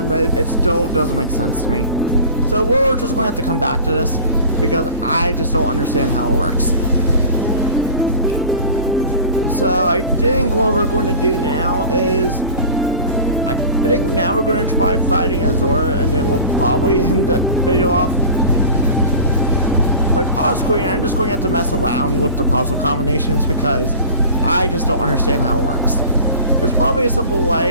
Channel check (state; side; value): inverted; both; correlation -0.37